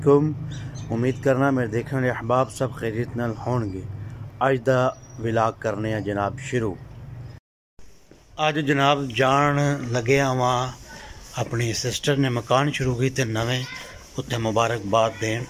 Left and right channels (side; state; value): both; identical; correlation 1.00